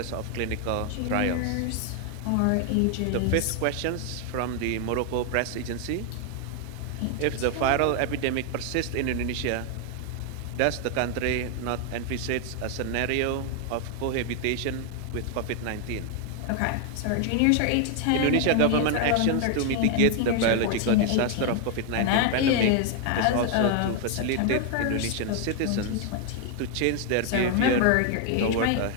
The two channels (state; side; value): different; both; correlation 0.00